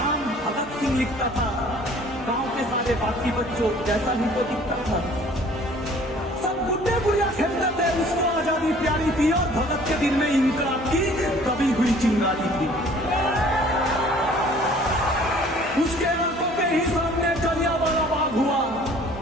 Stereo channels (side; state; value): both; normal; correlation 0.53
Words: भगत सिंह लिखता था। गांव के सारे बाकी बच्चों जैसा ही तो दिखता था। सब गुड्डे गुड़िया खेलते थे, उसको आजादी प्यारी थी और भगत के दिन में इंकलाब की दबी हुई चिंगारी थी। उसके आंखों के ही सामने जलियांवाला बाग हुआ।